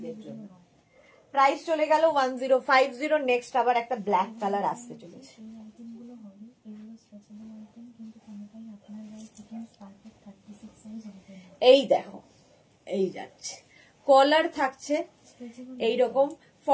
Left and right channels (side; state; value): both; identical; correlation 1.00